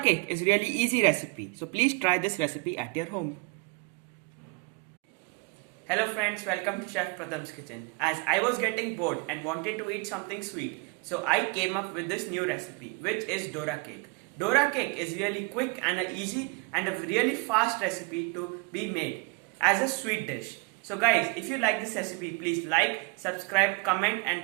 is really easy recipe, so please try this recipe at your home. Hello friends, welcome to Chef Pratham's kitchen. As I was getting bored and wanted to eat something sweet, so I came up with this new recipe, which is Dora cake. Dora cake is really quick and easy and a really fast recipe to be made as a sweet dish. So guys, if you like this recipe, please like, subscribe, comment and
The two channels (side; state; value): left; quieter; 28.8 dB